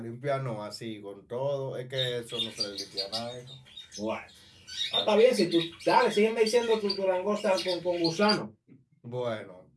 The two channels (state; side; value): identical; both; correlation 1.00